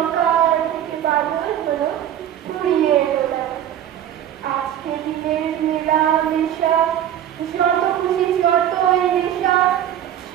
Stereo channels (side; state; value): left; quieter; 10.9 dB